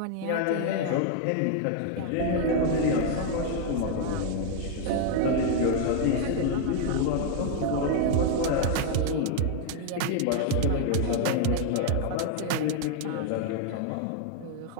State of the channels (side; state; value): both; different; correlation 0.00